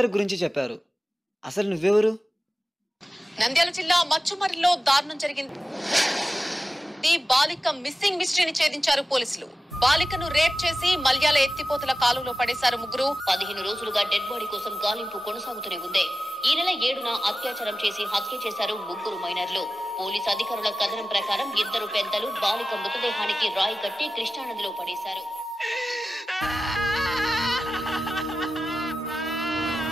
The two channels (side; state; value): both; normal; correlation 0.94